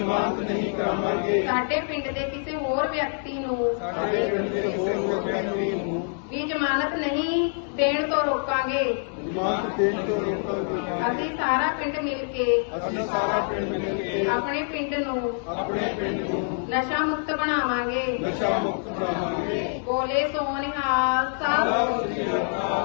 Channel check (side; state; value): right; silent; 61 dB below the other